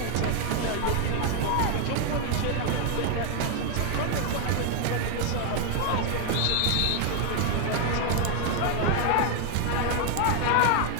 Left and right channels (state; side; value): different; both; correlation 0.00